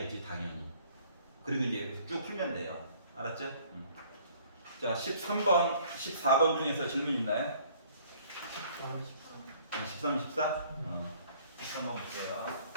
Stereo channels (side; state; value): both; inverted; correlation -0.57